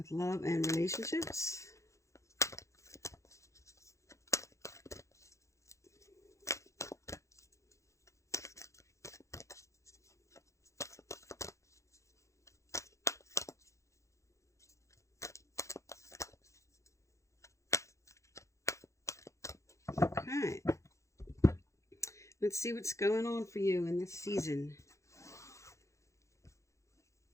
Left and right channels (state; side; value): late; right; 0.15 ms